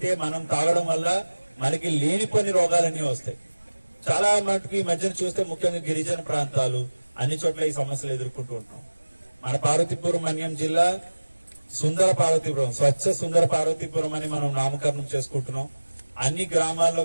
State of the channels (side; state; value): both; inverted; correlation -1.00